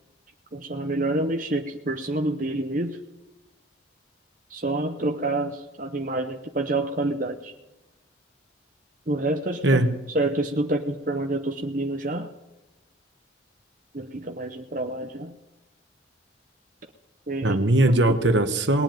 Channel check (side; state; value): both; normal; correlation 0.49